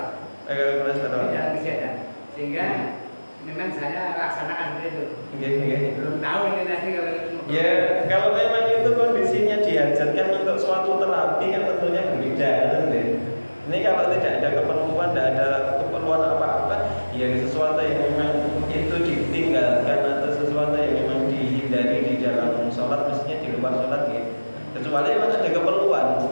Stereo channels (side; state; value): both; inverted; correlation -1.00